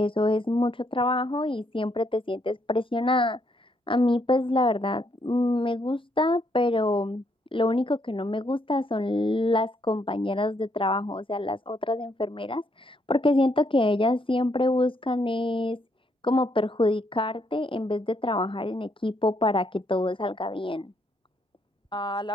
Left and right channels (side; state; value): both; normal; correlation 0.73